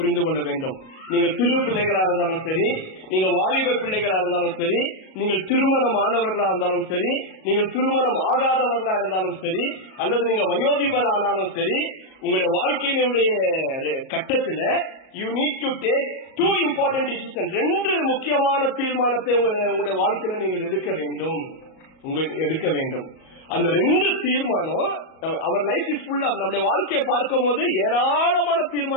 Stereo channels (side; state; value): right; late; 37 ms